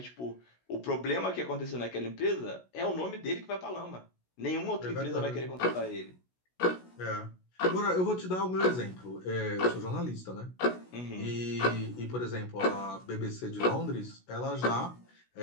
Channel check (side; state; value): right; late; 16 ms